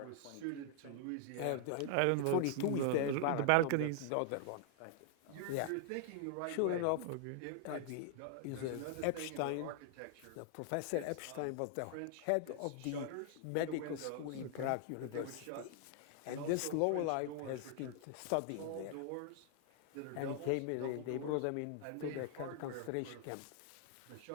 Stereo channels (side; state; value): both; different; correlation 0.00